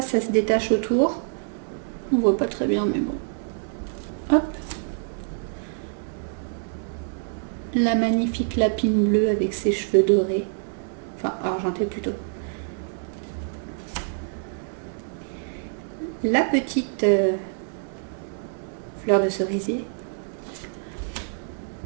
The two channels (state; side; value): silent; left; digital silence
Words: se détache autour. On voit pas très bien, mais bon. Hop. La magnifique lapine bleue avec ses cheveux dorés. Enfin, argenté plutôt. La petite fleur de cerisier.